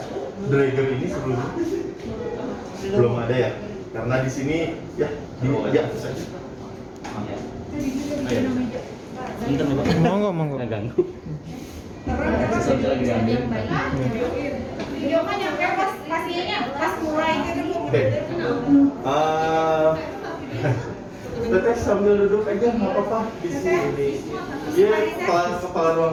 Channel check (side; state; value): both; identical; correlation 1.00